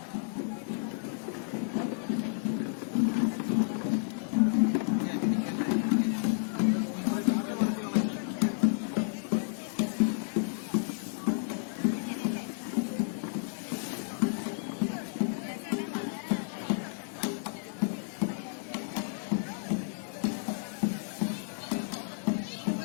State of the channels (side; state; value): right; silent; 57 dB below the other